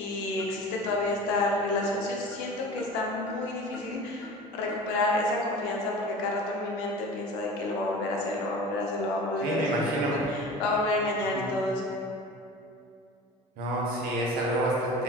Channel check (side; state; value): both; normal; correlation 0.37